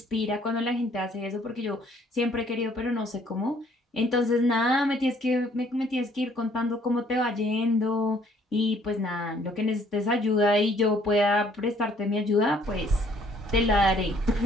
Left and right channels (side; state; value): both; normal; correlation 0.62